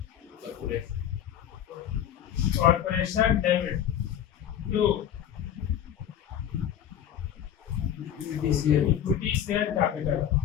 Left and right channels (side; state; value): right; quieter; 10.0 dB